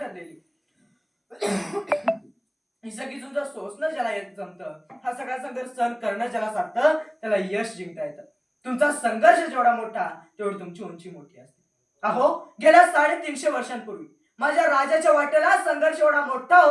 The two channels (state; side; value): identical; both; correlation 1.00